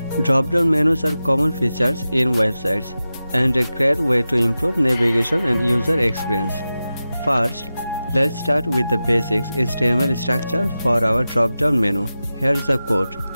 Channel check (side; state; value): both; inverted; correlation -0.94